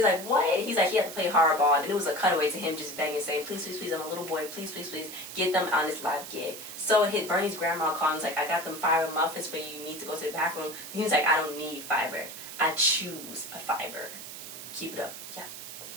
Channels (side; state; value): right; noise; hiss, 11 dB below the sound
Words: like, what? He's like, he had to play hardball, and it was a cutaway to him just begging, saying, please, please, please, I'm a little boy, please, please, please, get them on this live gig. So hit Bernie's grandma called, and he's like, I got them fiber muffins for you, you need to go to the bathroom. And he's like, I don't need fiber. I choose a fiber. Keep it up. Yeah.